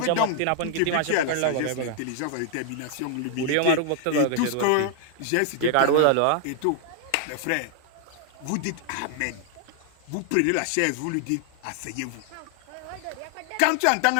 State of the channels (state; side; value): different; both; correlation 0.00